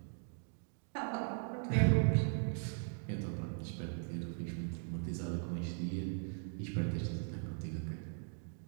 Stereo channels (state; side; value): silent; left; 52 dB below the other